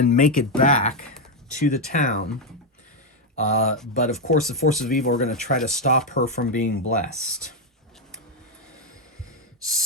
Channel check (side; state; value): both; normal; correlation 0.04